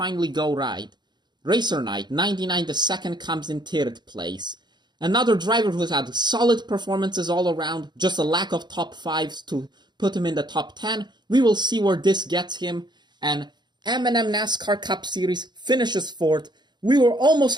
go right. Racer Knight, 99, the 2nd, comes in 3rd place. Another driver who's had solid performances all around. Just a lack of top 5s to put him in the top 10. We will see where this gets him. And M&M NASCAR Cup Series finishes 4th. We were almost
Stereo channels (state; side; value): late; left; 0.21 ms